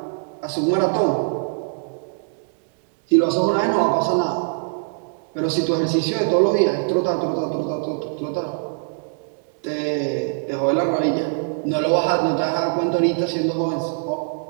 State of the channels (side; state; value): left; silent; digital silence